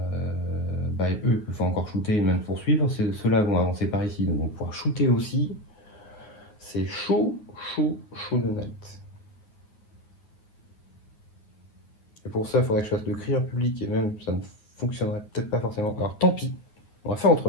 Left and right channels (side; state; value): right; late; 9.3 ms